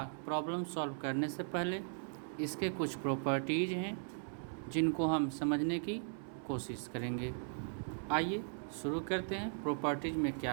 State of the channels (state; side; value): silent; left; 52 dB below the other